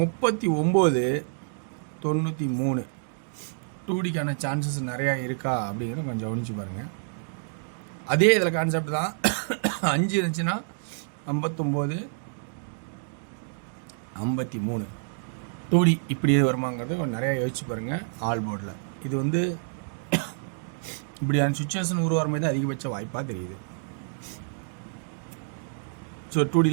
2Dக்கான சான்சஸ் நிறையா இருக்கா அப்படிங்கிறத கொஞ்சம் கவனிச்சு பாருங்கள். அதே இதில் கான்செப்ட் தான். 5 இருந்துச்சுன்னா 59-53 2D இப்படி வருமாங்கிறது கொஞ்சம் நிறையா யோசிச்சு பாருங்கள். ஆல் போர்டில் இது வந்து இப்படியான சுச்சுவேஷன் உருவாகிற மாதிரி தான் அதிகபட்ச வாய்ப்பாக தெரியுது. ஸோ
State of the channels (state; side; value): silent; left; digital silence